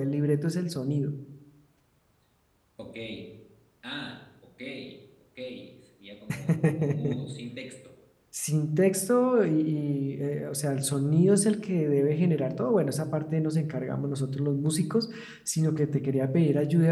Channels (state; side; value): identical; both; correlation 1.00